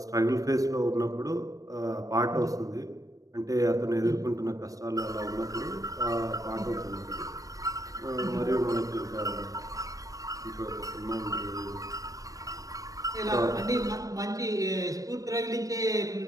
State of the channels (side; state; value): left; late; 0.16 ms